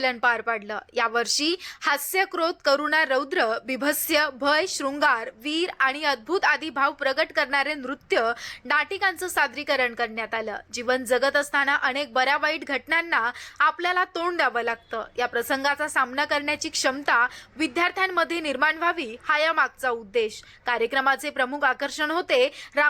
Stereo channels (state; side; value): identical; both; correlation 1.00